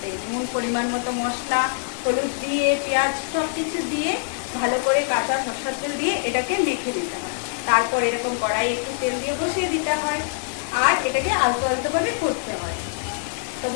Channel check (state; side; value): silent; right; 57 dB below the other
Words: নুন পরিমাণ মতো মশলা, হলুদ দিয়ে, পেঁয়াজ সব কিছু দিয়ে ভালো করে কাঁচা সরষের তেল দিয়ে এটাকে মেখে দিতে হয়। তারপর এরকম কড়াই একটু তেল দিয়ে বসিয়ে দিতে হয় আর এটাকে আলতো আলতো ভাবে করতে হয়। তো